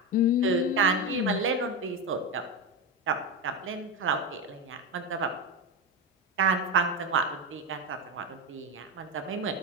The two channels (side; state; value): both; normal; correlation 0.15